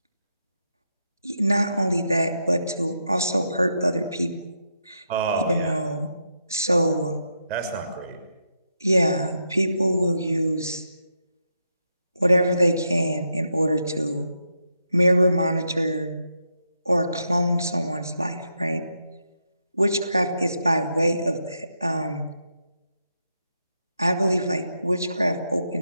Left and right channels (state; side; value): inverted; both; correlation -0.82